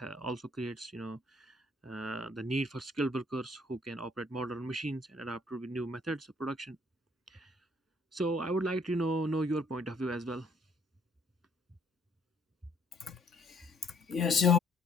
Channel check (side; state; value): both; normal; correlation 0.64